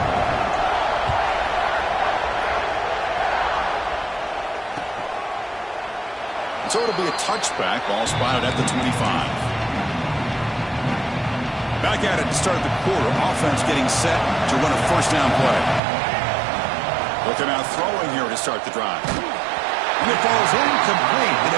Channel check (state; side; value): drops out; left; at 15.8 s